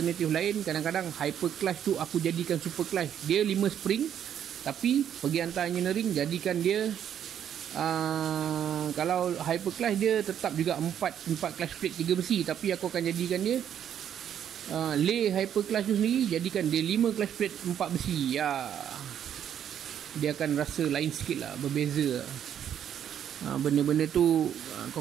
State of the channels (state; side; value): quieter; left; 9.5 dB